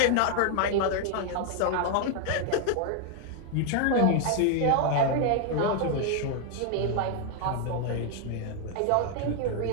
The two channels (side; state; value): both; different; correlation 0.00